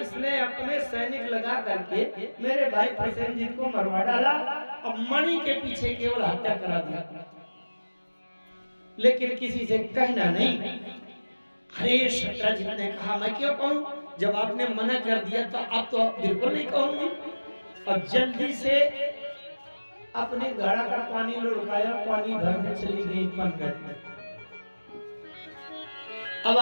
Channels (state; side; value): inverted; both; correlation -1.00